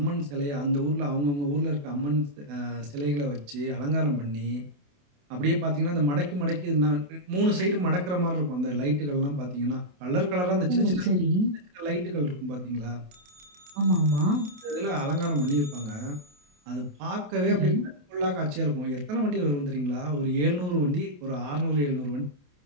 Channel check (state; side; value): late; left; 28 ms